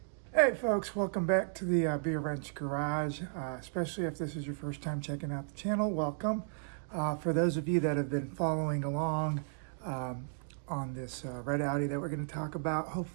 Hey folks, welcome back to the Beer Wrench Garage, especially if this is your first time checking out the channel, welcome. For those of you that have been following along on this red Audi that we're going to talk about,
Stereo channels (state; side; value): silent; left; digital silence